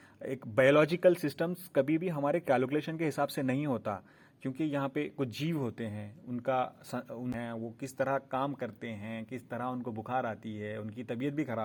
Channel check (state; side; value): identical; both; correlation 1.00